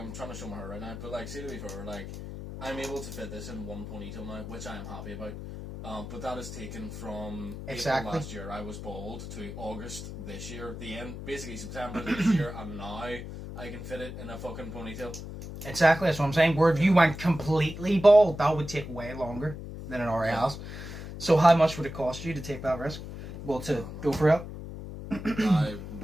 trying to show my hair right now, but, like, see, to be fair, like, I'm able to fit this in one ponytail now, which I am happy about. But that is taken from April last year, I was bald, to August this year, the end, basically September this year, and now I can fit it in a fucking ponytail. Exactly, that's what I'm saying. Where if you went completely bald, that would take way longer than it already has. So how much would it cost you to take that risk? Well, to go for it? I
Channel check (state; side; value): noise; left; hum, 9 dB below the sound